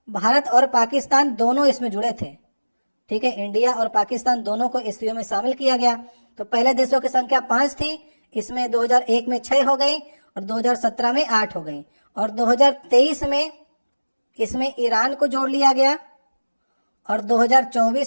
भारत और पाकिस्तान दोनों इसमें जुड़े थे। ठीक है, इंडिया और पाकिस्तान दोनों को एससीओ में शामिल किया गया। तो पहले देशों की संख्या 5 थी, इसमें 2001 में 6 हो गई और 2017 में 8 हो गई और 2023 में इसमें ईरान को जोड़ लिया गया और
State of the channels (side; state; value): both; inverted; correlation -1.00